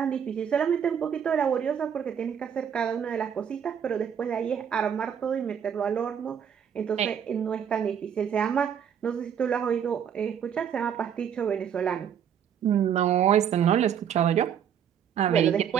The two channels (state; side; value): quieter; left; 8.4 dB